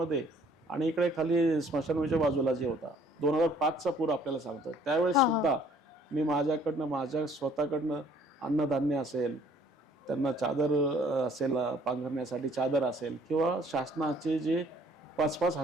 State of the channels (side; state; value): both; normal; correlation 0.58